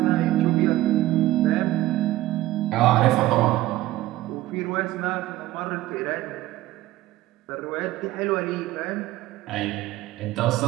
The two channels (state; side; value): quieter; left; 16.0 dB